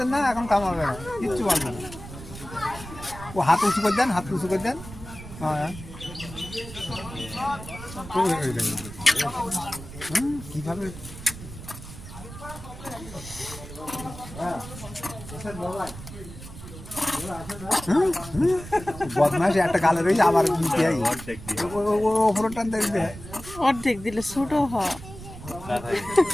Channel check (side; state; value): right; noise; rumble, 14 dB below the sound